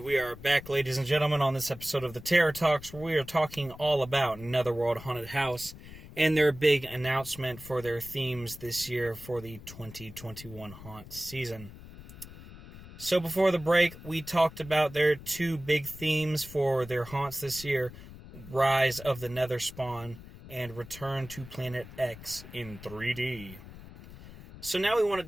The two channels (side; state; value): left; noise; rumble, 16 dB below the sound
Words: we are back, ladies and gentlemen, on this episode of the Terror Talks, where we are talking all about Netherworld Haunted House and their big announcement for their themes this year for the 2021 haunt season. So before the break, we talked about their two big themes for their haunts this year: Rise of the Netherspawn and Return to Planet X in 3D. So now we want to